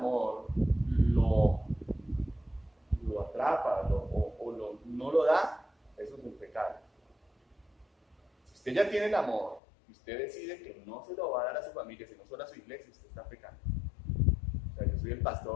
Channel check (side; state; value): right; drops out; at 9.6 s